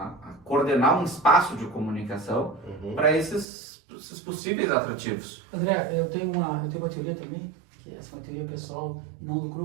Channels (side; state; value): left; drops out; at 3.5 s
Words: coordenar um espaço de comunicação para esses possíveis atrativos. André, eu tenho uma teoria também, que essa é uma teoria pessoal e não do